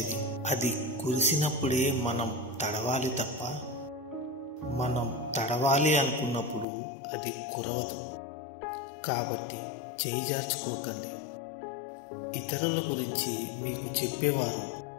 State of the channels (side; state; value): right; drops out; at 6.7 s